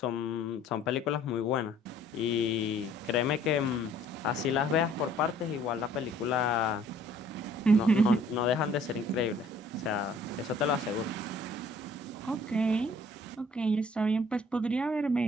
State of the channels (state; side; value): normal; both; correlation 0.57